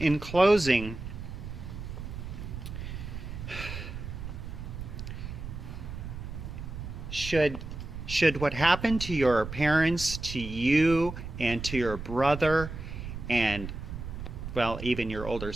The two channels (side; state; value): right; noise; rumble, 8 dB below the sound